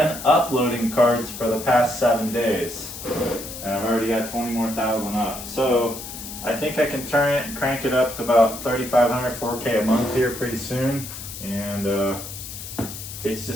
uploading cards for the past 7 days. And I've already got 20 more thousand up. So I think I can turn it and crank it up to about 3,500, 4K a month here pretty soon. And it's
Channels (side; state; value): left; noise; hiss, 10 dB below the sound